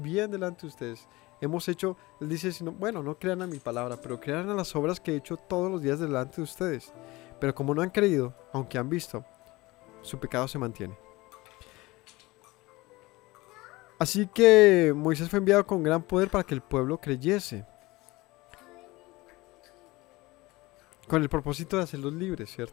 delante de ustedes. Hemos hecho, él dice, bueno, no crean a mi palabra, pero crean a las obras que he hecho todos los días delante de ustedes. Pero como no han creído, aunque han visto, su pecado se mantiene. Así que Moisés fue enviado con gran poder para que el pueblo creyese. Con el propósito de hacerlos libres,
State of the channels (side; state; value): right; quieter; 21.0 dB